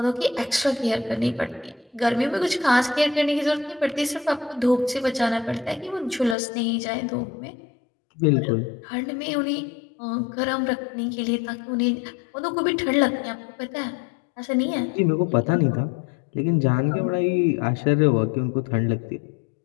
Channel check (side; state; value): right; drops out; at 6.4 s